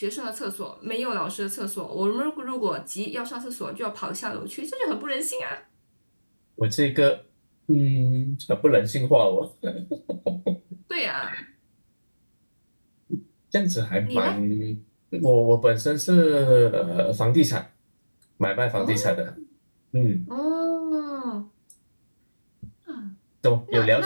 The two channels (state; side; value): inverted; both; correlation -1.00